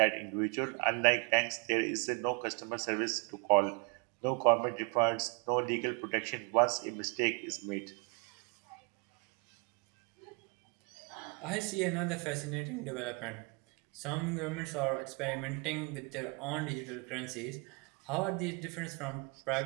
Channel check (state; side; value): quieter; left; 31.9 dB